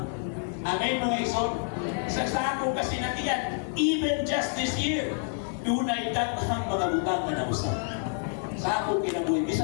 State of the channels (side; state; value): right; silent; 59 dB below the other